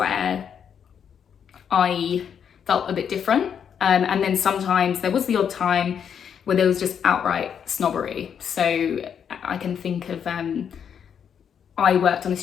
I felt a bit different. And then sometimes there was the odd time where there was just outright snobbery. So I can think of, I worked on a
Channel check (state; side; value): quieter; right; 7.9 dB